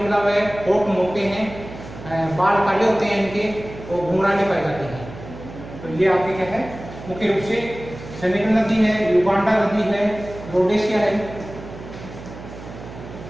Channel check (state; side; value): noise; right; hum, 14 dB below the sound